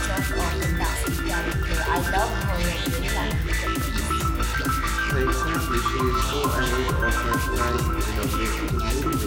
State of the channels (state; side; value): identical; both; correlation 1.00